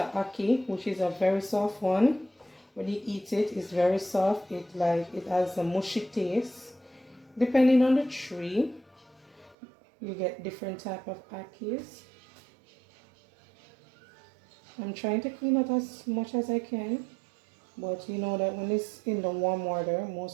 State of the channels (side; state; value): left; drops out; at 9.6 s